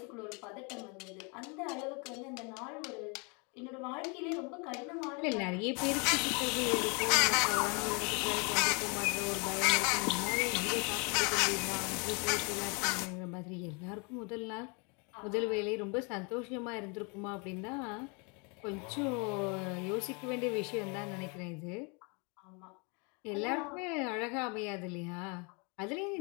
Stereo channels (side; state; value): right; quieter; 32.5 dB